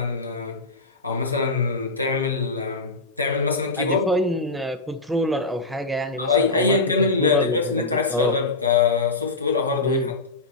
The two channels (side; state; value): right; quieter; 3.3 dB